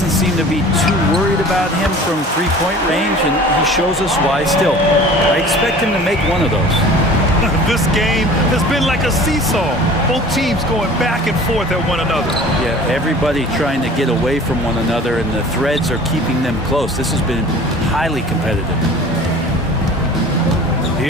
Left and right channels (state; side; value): normal; both; correlation 0.44